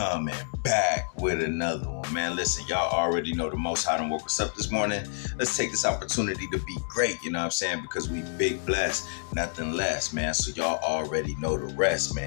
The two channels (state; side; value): silent; right; digital silence